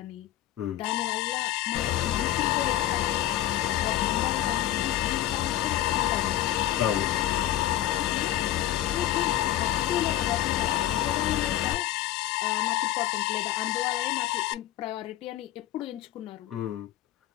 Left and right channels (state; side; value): quieter; right; 13.8 dB